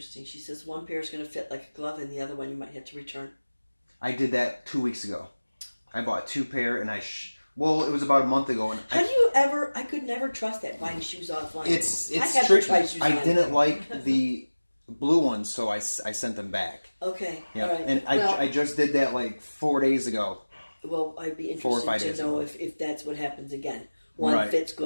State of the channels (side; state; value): both; inverted; correlation -1.00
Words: She says one pair is going to fit like a glove, and the other one you might have to return. I did that 2 weeks ago. I bought 2 pair, and it was about a month ago. And How do you ever? I could never trust that buying shoes offline. It's I tricky. I didn't like the blue ones, so I sent them back. Okay. Yeah, all right. and I just did that like 4 days ago. Well, I'd be 4 or 5 interested days to know ago. if that's what happens again. One fits